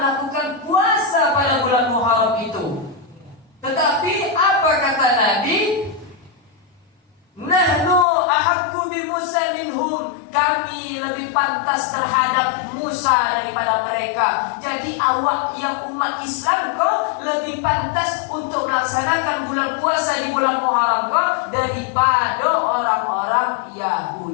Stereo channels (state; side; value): drops out; right; at 8.1 s